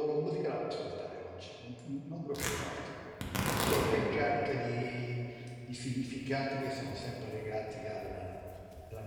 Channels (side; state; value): both; identical; correlation 1.00